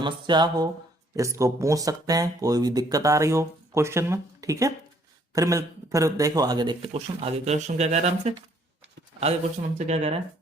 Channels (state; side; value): normal; both; correlation 0.64